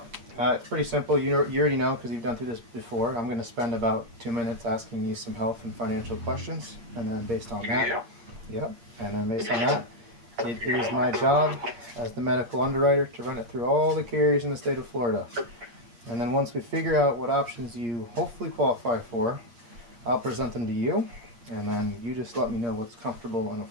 it's pretty simple. You already know because you've done through this before. I'm going to spend about 2 minutes asking you some health and financial questions, and then based on that, and then based on that, it is my job as the medical underwriter to run it through all the carriers in the state of Florida. And then once we figure out what options you hopefully qualify for, I'll present them to you, and then you just let me know what's comfortable and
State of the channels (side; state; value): left; late; 8.6 ms